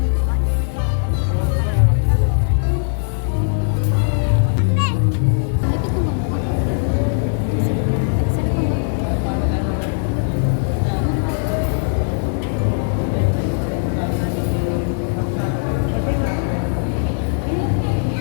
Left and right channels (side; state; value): right; silent; 65 dB below the other